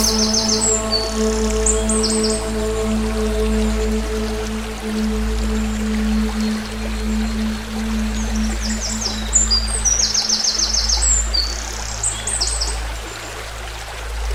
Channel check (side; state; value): both; identical; correlation 1.00